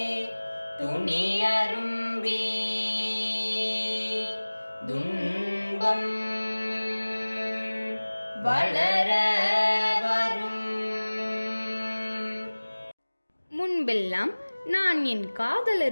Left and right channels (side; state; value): both; inverted; correlation -1.00